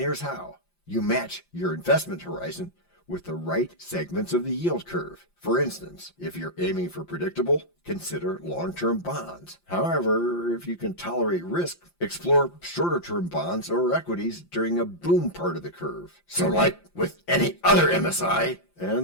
here's how. You match your investment horizon with the right segments of the yield curve. For instance, if you're aiming for predictable, consider long-term bonds. However, if you can tolerate risk, explore shorter-term bonds or equities during a boom part of the curve. So like with any other MSI,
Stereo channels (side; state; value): right; late; 5.8 ms